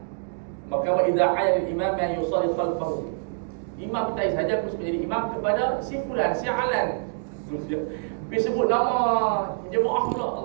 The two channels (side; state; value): left; silent; digital silence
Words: Maka wa idza ayal imam yang yusalli khalfahu. Imam kita saja harus menjadi imam kepada si fulan, si alan. Pergi sebut nama jemaah